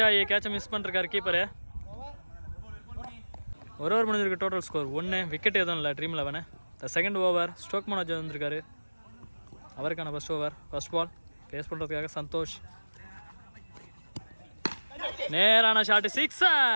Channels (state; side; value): inverted; both; correlation -1.00